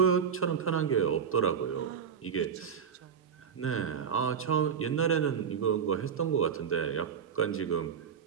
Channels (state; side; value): quieter; left; 7.3 dB